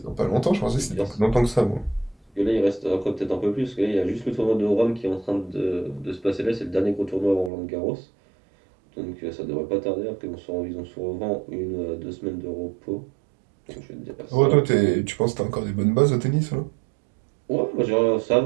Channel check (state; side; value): drops out; left; at 7.5 s